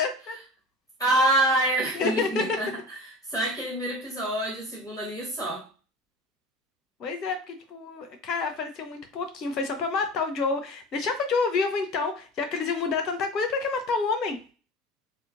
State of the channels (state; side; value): normal; both; correlation 0.34